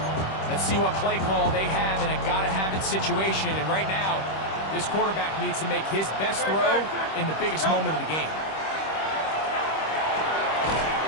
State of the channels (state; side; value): late; right; 26 ms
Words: Let's see what play call they have in a gotta-have-it situation, and right now, this quarterback needs to make his best throw in the biggest moment of the game.